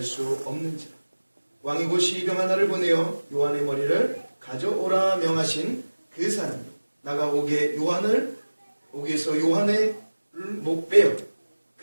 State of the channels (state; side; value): inverted; both; correlation -1.00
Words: 수 없는지라. 왕이 곧 시병 하나를 보내어 요한의 머리를 가져오라 명하신 그 사람이 나가 옥에서 요한의 목 빼어